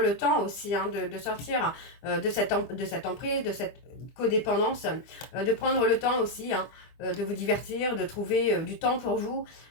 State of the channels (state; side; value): late; right; 25 ms